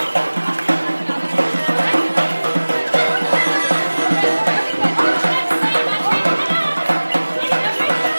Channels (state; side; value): inverted; both; correlation -1.00